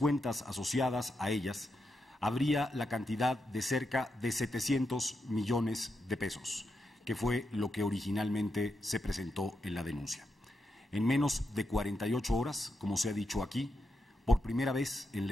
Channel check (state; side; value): normal; both; correlation 0.85